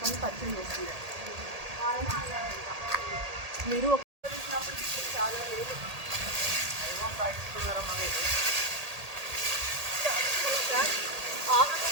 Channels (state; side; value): late; left; 1.8 ms